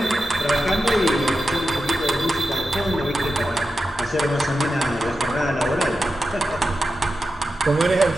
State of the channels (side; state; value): both; normal; correlation 0.91